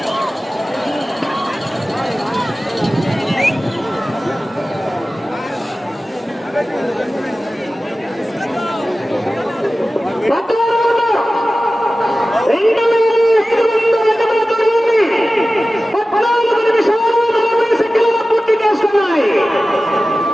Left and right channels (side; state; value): both; normal; correlation 0.95